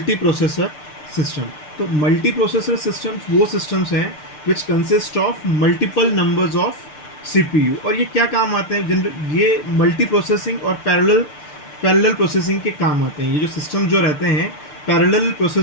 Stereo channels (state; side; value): late; right; 6.7 ms